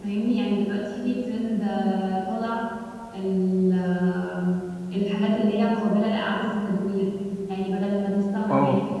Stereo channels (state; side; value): identical; both; correlation 1.00